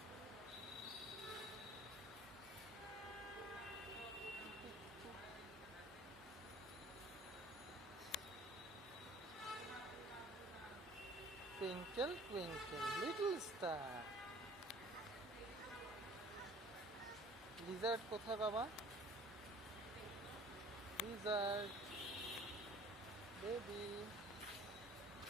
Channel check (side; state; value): both; normal; correlation 0.50